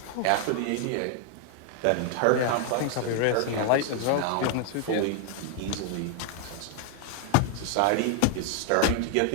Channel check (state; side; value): different; both; correlation 0.00